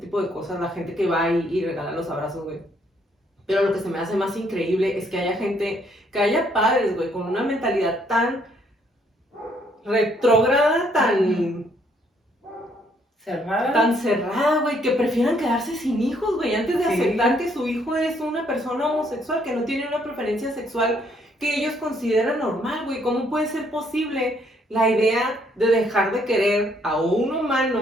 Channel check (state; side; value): normal; both; correlation 0.68